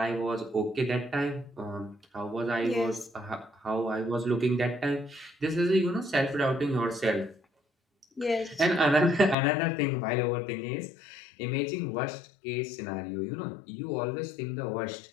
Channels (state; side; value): drops out; right; at 9.3 s